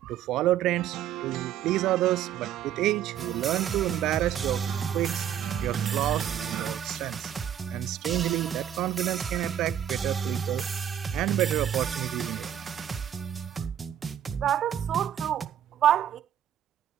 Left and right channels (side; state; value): left; quieter; 10.1 dB